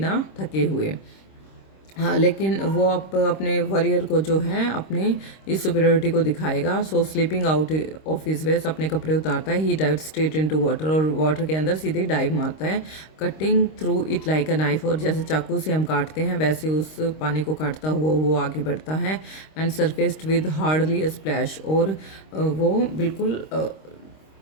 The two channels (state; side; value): late; right; 26 ms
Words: थके हुए। हाँ, लेकिन वो अपने वॉरियर को जो है अपने इस सुपीरियोरिटी को दिखाएगा। So slipping out of his vest, अपने कपड़े उतारता है। He dive straight into water, और वाटर के अंदर सीधे डाइव मारता है। Cutting through it like a knife, और जैसे चाकू से हम काटते हैं वैसे उस पानी को काटता हुआ वो आगे बढ़ता है। And surfaced with hardly a splash, और वो बिल्कुल